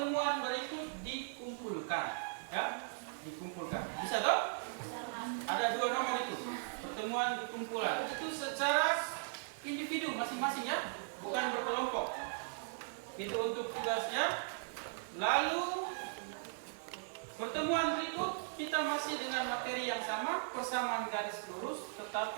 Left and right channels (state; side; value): silent; left; digital silence